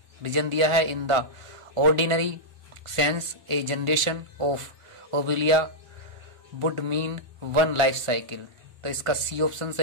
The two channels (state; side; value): late; left; 1.4 ms